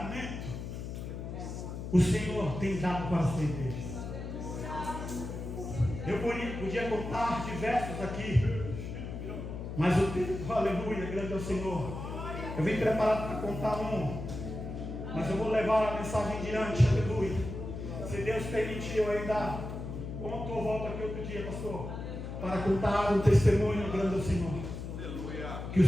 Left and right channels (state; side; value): noise; left; hum, 7 dB below the sound